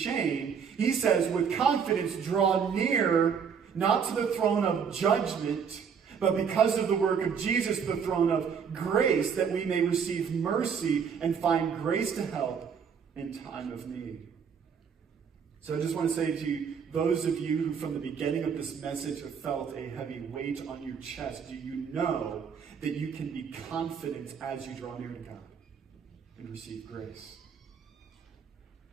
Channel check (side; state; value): left; quieter; 6.8 dB